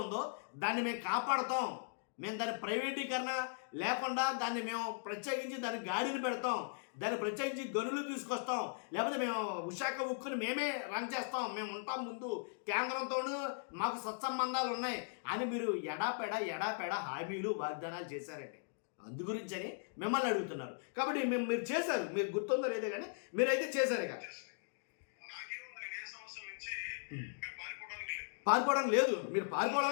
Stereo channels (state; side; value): silent; right; digital silence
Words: ఉందో దాన్ని మేము కాపాడుతాం, మేము దాని ప్రైవేటీకరణ లేకుండా దాన్ని మేము ప్రత్యేకించి దాన్ని గాడిని పెడతాం, దాన్ని ప్రత్యేకించి గనులు తీసుకొస్తాం, లేకపోతే మేము విశాఖ ఉక్కుని మేమే రన్ చేస్తాం, మేము ఉంటాం ముందు కేంద్రంతోనూ మాకు సత్సంబంధాలు ఉన్నాయి అని మీరు ఎడాపెడ హామీలు వాగ్దానాలు చేశారండి. అందు గురించి అని మిమ్మల్ని అడుగుతున్నారు. కాబట్టి మీరు చేశారు, మీరు గుర్తుందో లేదో కానీ మీరైతే చేశారు. ఇక పారిపోవడం లేదు, మీరు